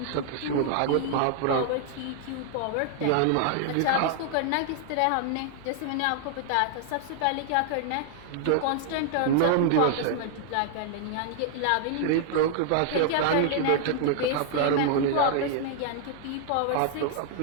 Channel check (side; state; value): both; different; correlation -0.01